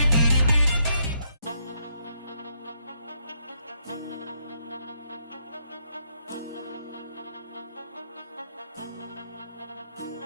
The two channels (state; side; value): inverted; both; correlation -0.75